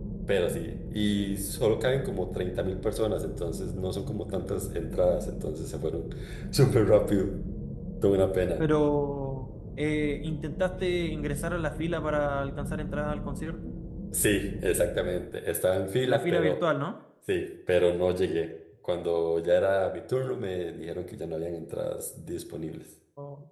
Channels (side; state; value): both; identical; correlation 1.00